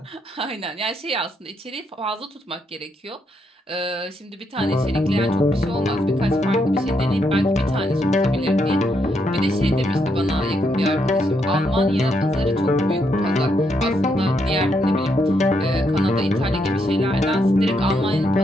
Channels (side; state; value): both; normal; correlation 0.78